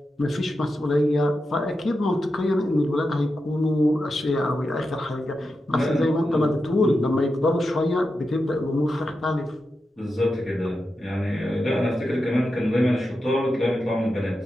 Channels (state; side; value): normal; both; correlation 0.89